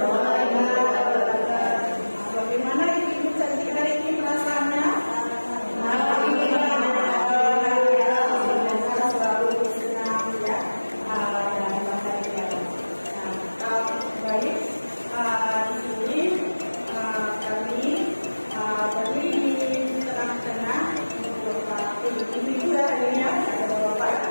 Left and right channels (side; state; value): both; inverted; correlation -1.00